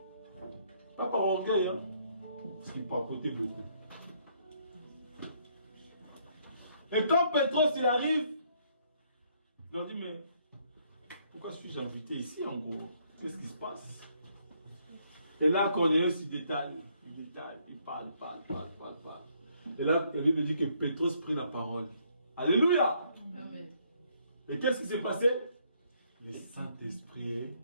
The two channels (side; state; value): both; inverted; correlation -0.69